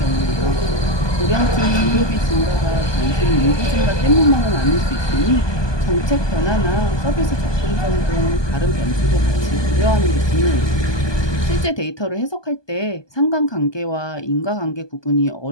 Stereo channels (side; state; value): right; late; 1.2 ms